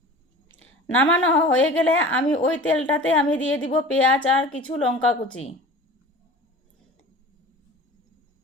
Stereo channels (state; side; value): normal; both; correlation 0.39